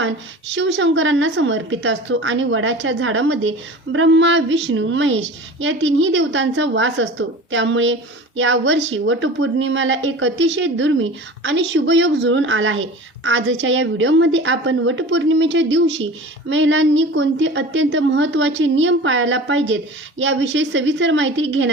शिवशंकरांना समर्पित असतो आणि वडाच्या झाडामध्ये ब्रह्मा, विष्णू, महेश या तिन्ही देवतांचा वास असतो। त्यामुळे या वर्षी वटपौर्णिमेला एक अतिशय दुर्मिळ आणि शुभयोग जुळून आला आहे। आजच्या या व्हिडिओमध्ये आपण वटपौर्णिमेच्या दिवशी महिलांनी कोणते अत्यंत महत्त्वाचे नियम पाळायला पाहिजेत याविषयी सविस्तर माहिती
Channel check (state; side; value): normal; both; correlation 0.37